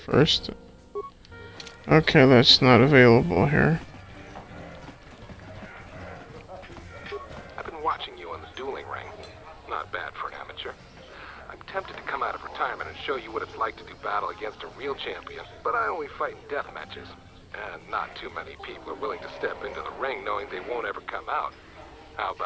first. Okay, that's not available here. I've been watching you on the dueling ring. Not bad for an amateur. I'm tempted to come out of retirement and show you what it's like to do battle against a real champion, but I only fight in death matches. And not too many people are willing to step into the ring knowing they won't ever come out. How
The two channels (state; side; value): identical; both; correlation 1.00